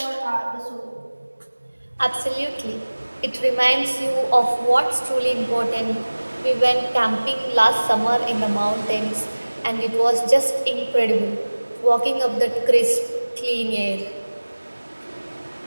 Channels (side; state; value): both; inverted; correlation -1.00